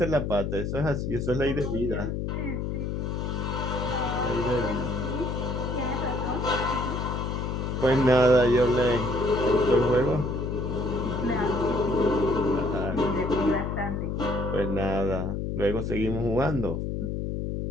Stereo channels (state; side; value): noise; left; hum, 2 dB below the sound